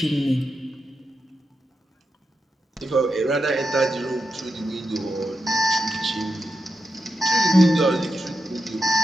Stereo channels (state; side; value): normal; both; correlation 0.87